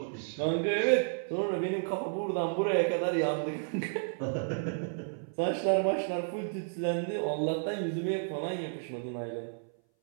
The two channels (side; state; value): left; silent; 57 dB below the other